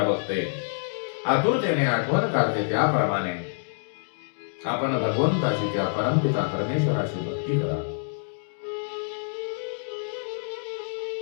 बघते, आतुरतेने आठवण काढते, त्याप्रमाणे आपण भगवंताची, त्या परमपिता परमेश्वराची भक्ती करा.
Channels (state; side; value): silent; right; digital silence